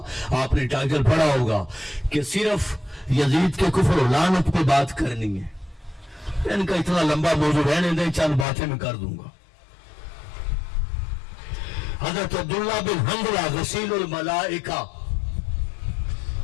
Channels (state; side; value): drops out; right; at 8.5 s